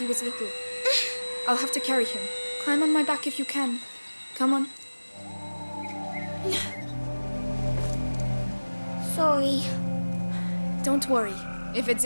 was little. I'll have to carry him. Climb on my back if you can. Come on. Sorry. Don't worry. If it's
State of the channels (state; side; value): inverted; both; correlation -1.00